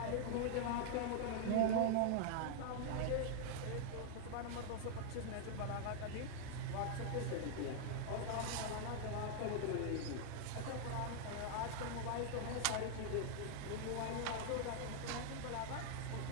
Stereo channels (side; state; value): both; different; correlation 0.00